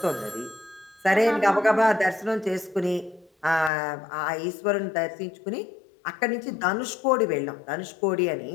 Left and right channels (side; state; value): right; drops out; at 3.7 s